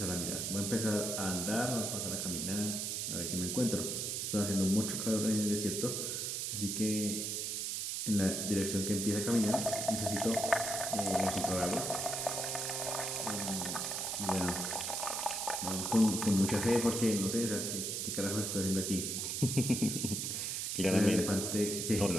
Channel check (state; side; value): noise; right; hiss, 2 dB below the sound